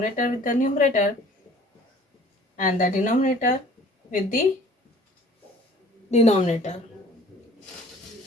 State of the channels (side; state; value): both; normal; correlation 0.51